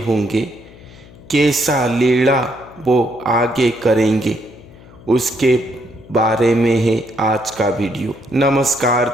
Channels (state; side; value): noise; left; hum, 22 dB below the sound